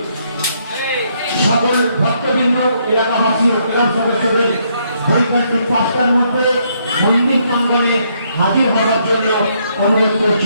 সকল ভক্তবৃন্দ, এলাকাবাসী ও ক্লাব সদস্যদের বৈকান্তিক 5টার মধ্যে মন্দির প্রাঙ্গণে হাজির হওয়ার জন্য অনুরোধ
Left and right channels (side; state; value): both; inverted; correlation -0.72